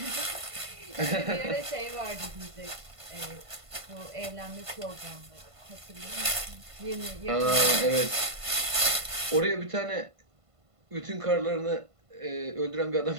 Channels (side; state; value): left; late; 1.5 ms